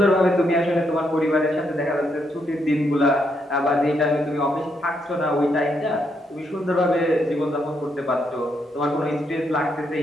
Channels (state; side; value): normal; both; correlation 0.77